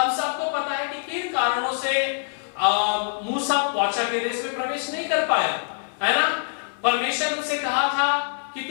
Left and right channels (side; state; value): right; silent; 62 dB below the other